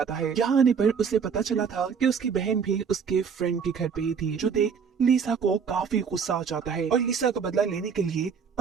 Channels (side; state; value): left; quieter; 6.4 dB